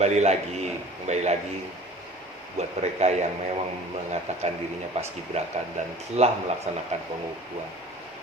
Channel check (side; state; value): both; normal; correlation 0.45